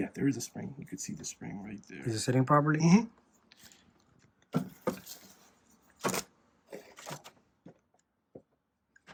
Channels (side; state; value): both; identical; correlation 1.00